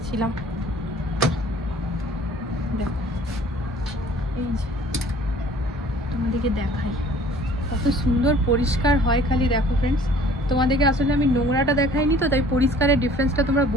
দেখো এই যে তোমাদেরকে দেখাই কত সুন্দর পরিষ্কার হয়। খালি দেখো ফ্রেন্ডস, তোমাদেরকে আসলে আমি নোংরাটা দেখাইনি তো, তাই পরিষ্কারের ডিফারেন্সটা তোমরা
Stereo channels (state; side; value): normal; both; correlation 0.52